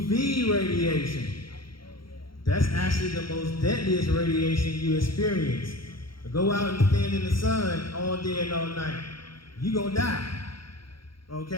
radiation. That's actually the most deadliest radiation you experience. Go out and stand in the sun all day and all night. You're going to die.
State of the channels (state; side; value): late; right; 0.73 ms